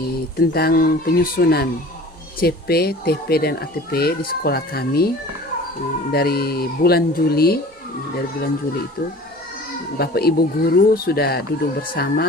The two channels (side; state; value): both; normal; correlation 0.43